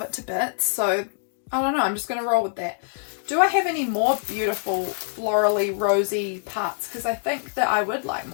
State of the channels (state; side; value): silent; right; 62 dB below the other